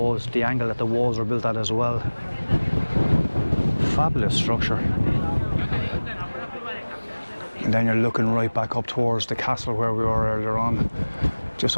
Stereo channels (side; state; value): both; inverted; correlation -1.00